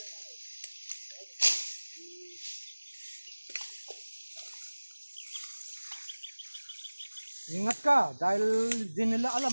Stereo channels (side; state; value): both; inverted; correlation -1.00